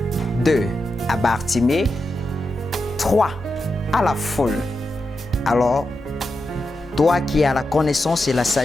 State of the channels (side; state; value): both; normal; correlation 0.88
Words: 2. À Bartimée. 3. À la foule. Alors, toi qui as la connaissance et la